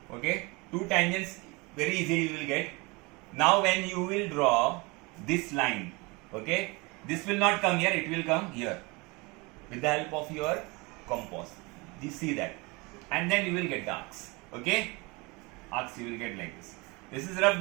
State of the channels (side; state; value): left; quieter; 26.2 dB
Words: okay, two tangents very easily you will get. Now when you will draw this line, okay, this will not come here, it will come here with the help of your compass. You see that, and then you will get the arcs. Okay, arcs you will get like this. This is rough